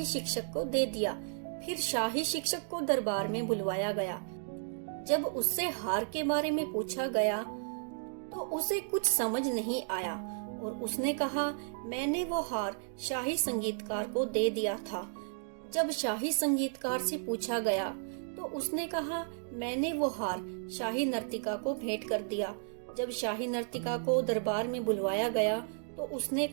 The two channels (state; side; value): silent; left; digital silence